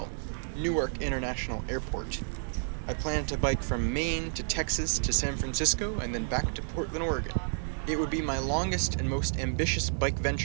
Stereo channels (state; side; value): silent; left; digital silence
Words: Newark International Airport. I planned to bike from Maine to Texas to San Francisco and then back to Portland, Oregon. It would be my longest and most ambitious bike